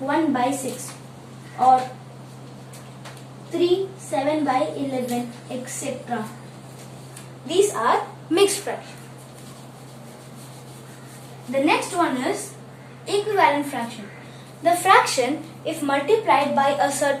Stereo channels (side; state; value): both; identical; correlation 1.00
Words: by 6 or 3 7 by 11, etc. These are mixed fractions. The next one is equivalent fraction. The fraction, if multiplied by a